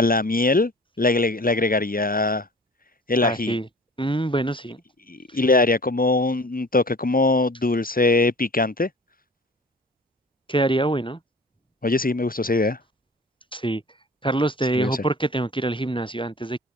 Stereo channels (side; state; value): both; normal; correlation 0.42